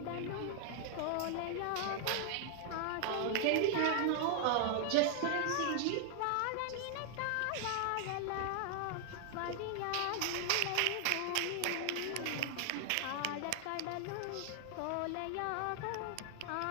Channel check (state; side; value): different; both; correlation 0.00